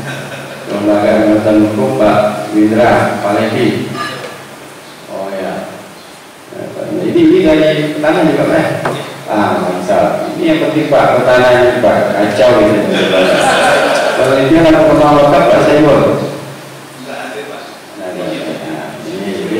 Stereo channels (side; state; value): both; identical; correlation 1.00